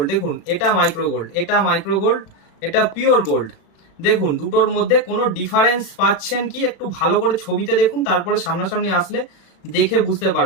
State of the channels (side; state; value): right; late; 36 ms